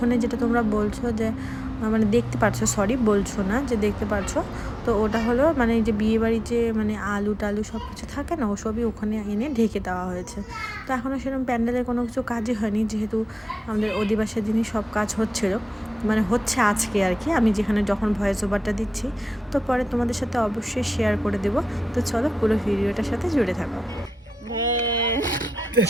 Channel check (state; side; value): normal; both; correlation 0.93